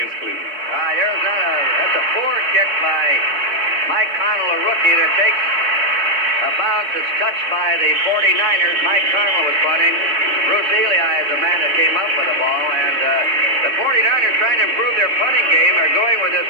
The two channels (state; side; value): late; left; 3.6 ms